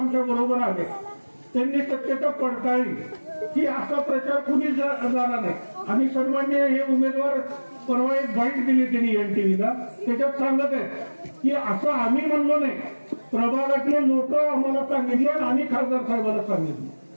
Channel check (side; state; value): both; inverted; correlation -1.00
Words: बरोबर आले. त्यांनी सत्यता पडताळली की असा प्रचार कुणी झाला नाही. आणि सन्मान्य हे उमेदवार परवा एक बाईट दिली त्यांनी NTVला. त्याच्यात सांगत आहे की असं आम्ही म्हणलो नाही प्रभागातले लोक आम्हाला सांगितले आणि आम्ही खासदार साहेबांना सांगितले.